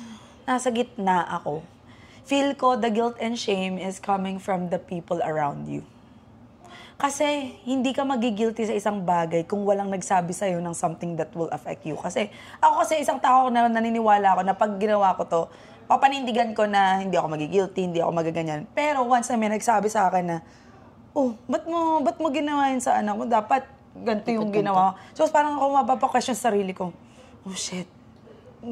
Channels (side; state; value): both; identical; correlation 1.00